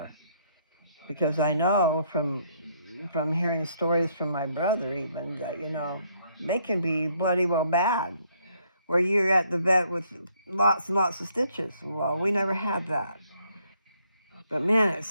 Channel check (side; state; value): both; inverted; correlation -0.69